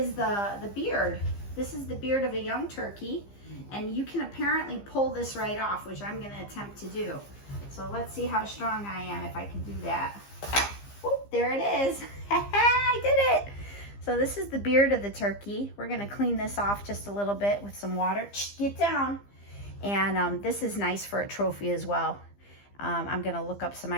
the beard. This is the beard of a young turkey, and you can apparently pull this right off, which I'm gonna attempt to do. So let's see how strong I am if I can do that. Whoop, there it is. I did it. So this is the beard of the turkey. We're gonna clean this off just a little bit with some water. Get down. And this is nice for a trophy as well. I'm gonna look up some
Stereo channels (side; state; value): right; late; 15 ms